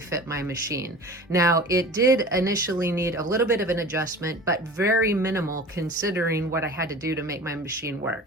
my machine. Now, it did initially need a little bit of an adjustment, but very minimal considering what I had to do to make my machine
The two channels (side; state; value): both; normal; correlation 0.39